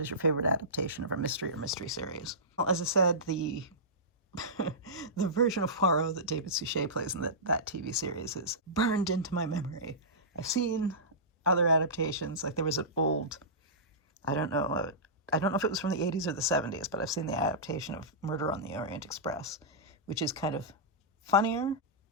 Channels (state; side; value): normal; both; correlation -0.18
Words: your favorite adaptation of a mystery or mystery series? Well, as I said, the the version of Poirot that David Suchet plays in that TV series is burned into my memory. I've seen other adaptations, like there was an old, I don't know if it was from the 80s or the 70s, but I've seen the adaptation of Murder on the Orient Express, which is kind of funnier.